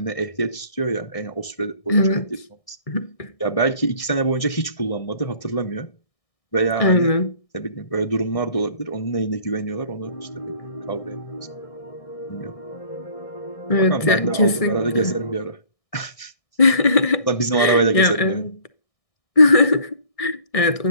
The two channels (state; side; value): late; right; 1.6 ms